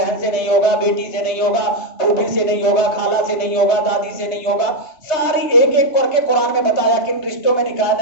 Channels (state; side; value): late; right; 3.2 ms